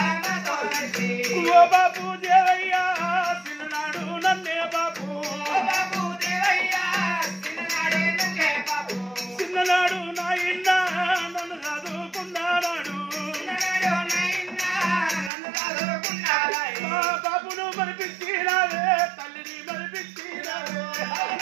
ఓ బాబు దేవయ్యా చిన్ననాడు నన్నే బాబు చిన్ననాడు నాయన్న నన్ను చదువుకున్నాడు మా బాబును మరిపించినావే తల్లిని మరిపించినావే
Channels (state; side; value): drops out; left; at 15.3 s